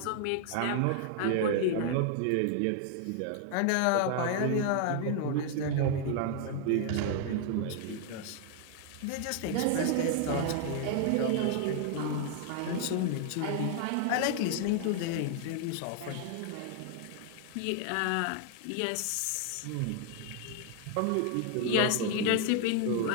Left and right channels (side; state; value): both; different; correlation 0.00